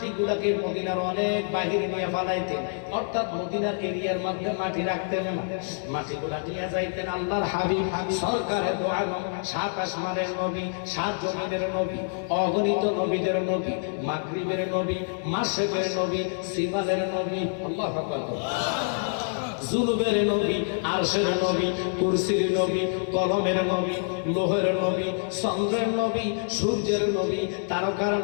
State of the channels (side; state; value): right; silent; digital silence